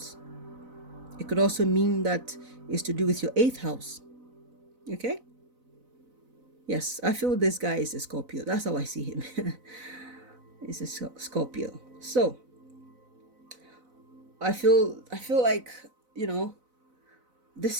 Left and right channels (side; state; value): left; late; 4.0 ms